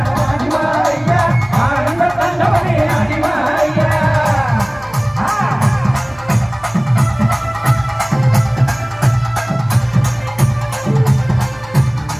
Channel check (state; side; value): noise; right; hum, 25 dB below the sound